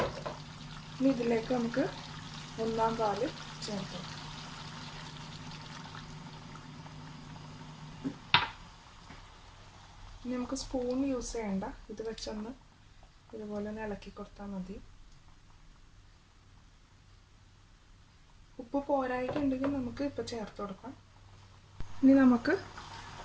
ഇനി ഇതിലേക്ക് നമുക്ക് 1/4 പാല് ചേർത്ത് കൊടുക്കാം. ഇനി നമുക്ക് സ്പൂൺ യൂസ് ചെയ്യണ്ട, ഇത് വെച്ചൊന്ന് ഇതുപോലെ ഒന്ന് ഇളക്കി കൊടുത്താൽ മതി. ഉപ്പ് പോരായിട്ടുണ്ടെങ്കിൽ നമുക്ക് ഇപ്പോൾ ചേർത്ത് കൊടുക്കാം. ഇനി നമുക്ക്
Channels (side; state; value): both; identical; correlation 1.00